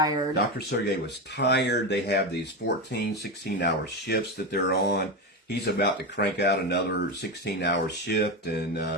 Dr. Sergey was tired. They have these 14, 16-hour shifts that they're on. He's about to crank out another 16-hour shift,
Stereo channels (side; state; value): both; normal; correlation 0.15